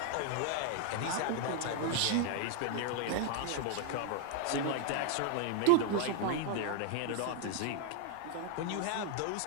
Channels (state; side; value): different; both; correlation 0.00